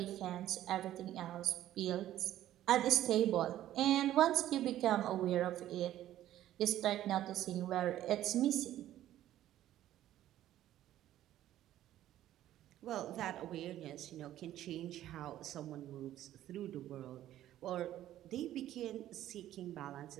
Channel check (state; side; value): quieter; left; 13.0 dB